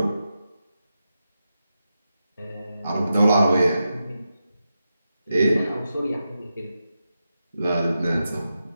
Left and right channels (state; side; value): inverted; both; correlation -0.89